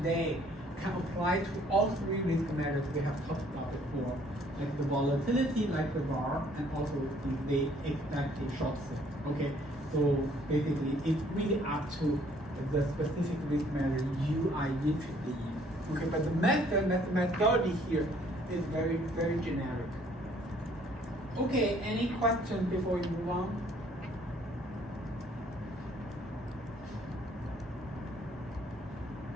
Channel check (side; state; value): both; normal; correlation 0.61